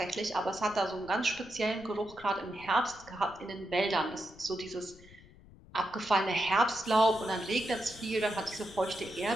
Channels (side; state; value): left; noise; rumble, 21 dB below the sound